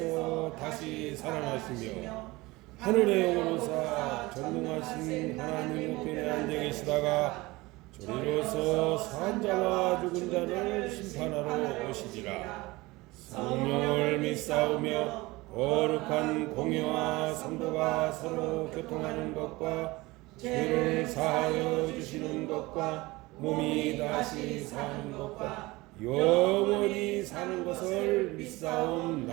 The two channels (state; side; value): quieter; left; 21.4 dB